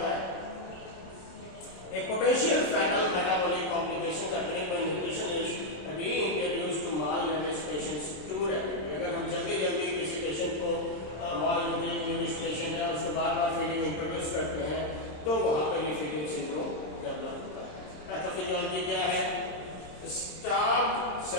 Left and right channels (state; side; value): late; right; 27 ms